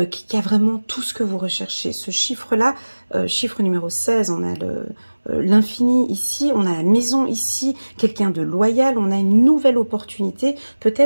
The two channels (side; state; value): both; inverted; correlation -1.00